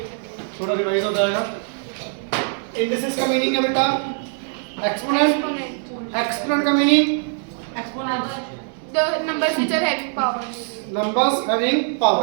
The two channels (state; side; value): silent; left; 62 dB below the other